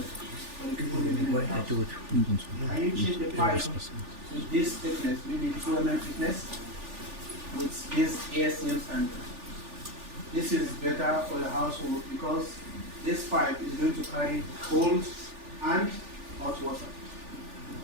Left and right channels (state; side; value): late; left; 3.4 ms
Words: for the people living in the house. Can you change the pipe with this thickness, maybe 2 mm thickness, with this ASTM standard? This is better for your household because this pipe is going to carry cold and hot water.